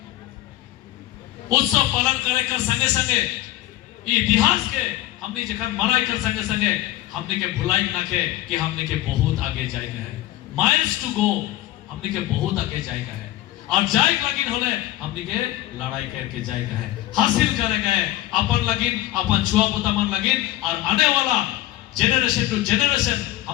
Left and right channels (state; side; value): quieter; right; 15.6 dB